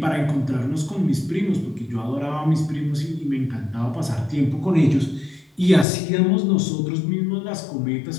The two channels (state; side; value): drops out; right; at 5.9 s